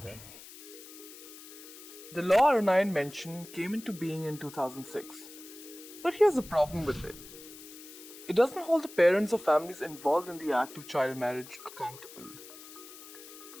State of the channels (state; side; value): noise; left; hiss, 16 dB below the sound